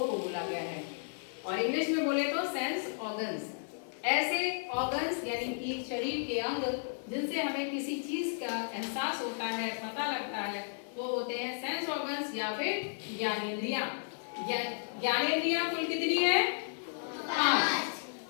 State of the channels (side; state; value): right; silent; digital silence